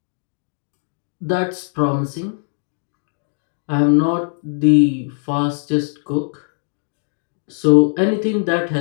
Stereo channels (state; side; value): silent; right; digital silence